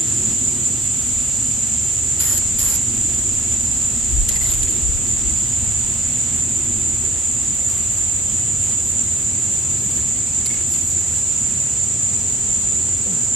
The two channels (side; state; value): both; normal; correlation 0.54